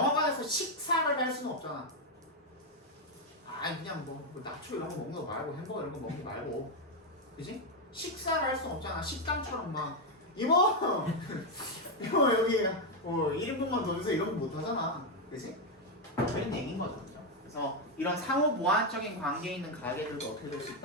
식사를 할 수는 없잖아. 아 그냥 뭐 나초 이런 거 먹는 거 말고 햄버거 이런 거 먹는 거 말고, 그지? 식사를 할 수는 없잖아. 식당처럼 막 이모 이모 여기 1인분만 더 주세요 이런 거 못 하잖아. 그지? 그런 얘기인 거죠. 그죠? 그래서 이런 상호 보완적인 관계에 있는 가게들도 어떻게 될 수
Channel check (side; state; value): both; normal; correlation 0.03